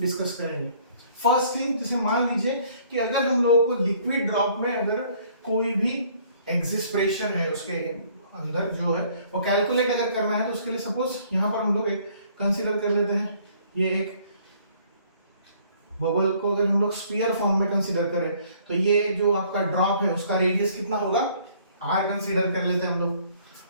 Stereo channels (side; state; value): both; inverted; correlation -0.59